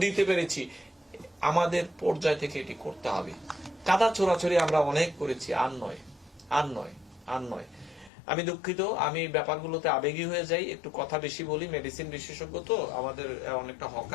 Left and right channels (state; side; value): drops out; right; at 8.1 s